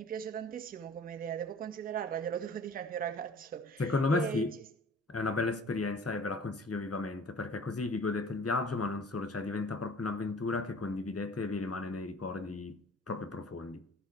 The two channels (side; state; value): both; normal; correlation 0.47